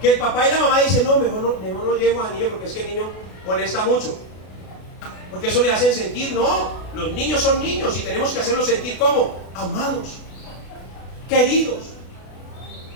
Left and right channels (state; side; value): late; right; 33 ms